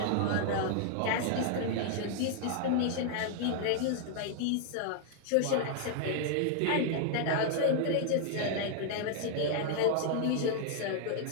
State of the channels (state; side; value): different; both; correlation 0.00